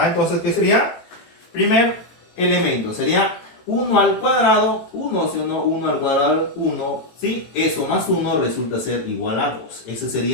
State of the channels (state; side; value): late; right; 18 ms